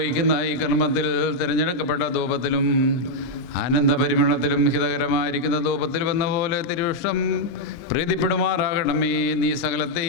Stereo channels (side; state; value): right; late; 23 ms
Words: ഈ കർമ്മത്തിൽ തിരഞ്ഞെടുക്കപ്പെട്ട ധൂപത്തിലും ആനന്ദപരിമളത്തിലും ഹിതകരമായിരിക്കുന്ന ധൂപത്തിലും എന്ന പോലെ തിരുവിഷ്ടം പ്രീതിപ്പെടുമാറാകണമേ. നീ